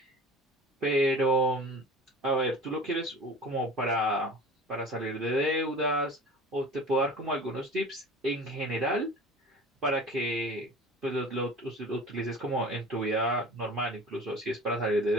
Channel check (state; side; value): normal; both; correlation 0.39